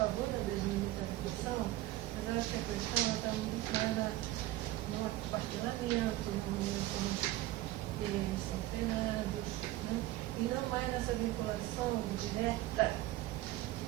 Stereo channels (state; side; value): quieter; left; 16.2 dB